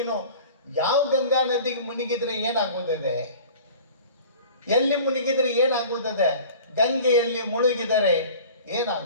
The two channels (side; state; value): both; inverted; correlation -0.42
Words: ಯಾವ ಗಂಗಾ ನದಿಗೆ ಮುಳುಗಿದ್ರೆ ಏನಾಗುತ್ತದೆ? ಎಲ್ಲಿ ಮುಳುಗಿದ್ರೆ ಏನಾಗುತ್ತದೆ? ಗಂಗೆಯಲ್ಲಿ ಮುಳುಗಿದರೆ